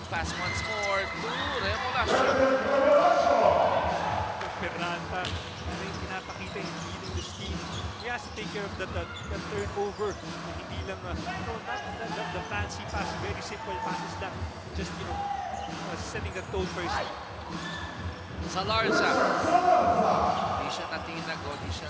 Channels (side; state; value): both; identical; correlation 1.00